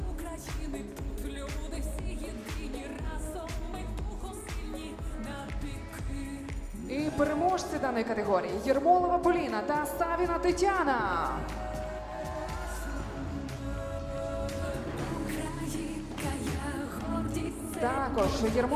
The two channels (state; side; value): identical; both; correlation 1.00